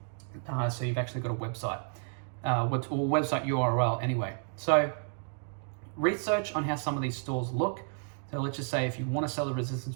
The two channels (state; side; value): silent; left; 57 dB below the other